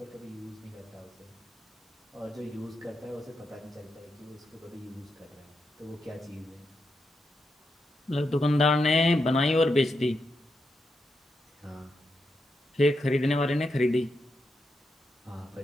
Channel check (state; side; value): normal; both; correlation 0.85